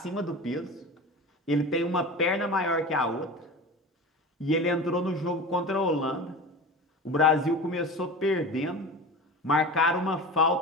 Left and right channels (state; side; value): normal; both; correlation 0.32